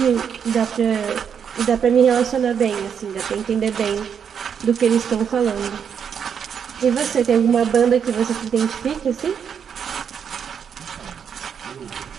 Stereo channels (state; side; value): quieter; left; 7.5 dB